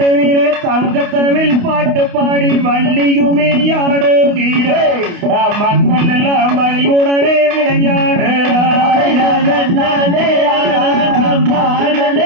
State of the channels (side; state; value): left; late; 28 ms